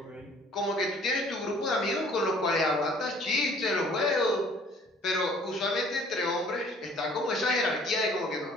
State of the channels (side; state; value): both; normal; correlation 0.54